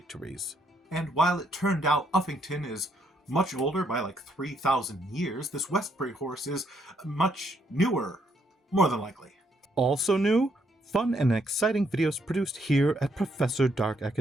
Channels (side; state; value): both; normal; correlation 0.73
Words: And while it turned out Uffington is much older by like 3,000 years, this Westbury horse is much newer, more than likely. Also new, fun and exciting videos produced here at Professor Dark